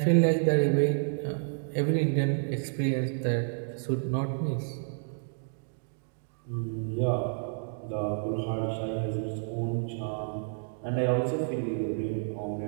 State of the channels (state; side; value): silent; left; digital silence